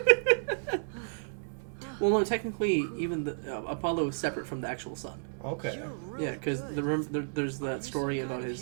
Well, no, technically, even the Apollo is separate from the actual sun. Okay. Yeah, because there's that story about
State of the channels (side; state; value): left; silent; digital silence